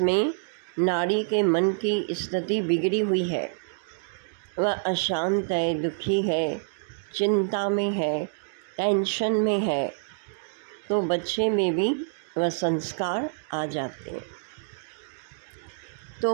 नारी के मन की स्थिति बिगड़ी हुई है, वह अशांत है, दुखी है, चिंता में है, टेंशन में है, तो बच्चे में भी वह संस्कार आ जाते हैं। तो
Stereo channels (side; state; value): left; silent; digital silence